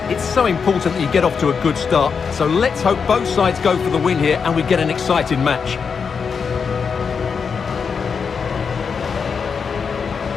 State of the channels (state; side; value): quieter; right; 5.9 dB